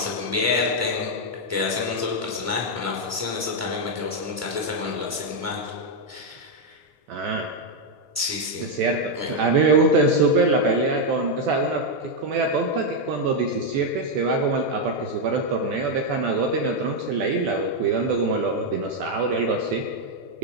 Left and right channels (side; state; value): both; normal; correlation 0.01